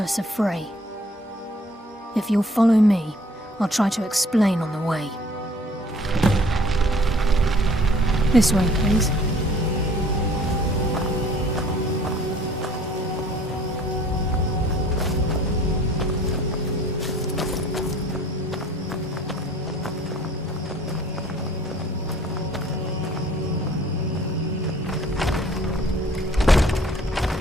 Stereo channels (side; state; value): both; normal; correlation 0.54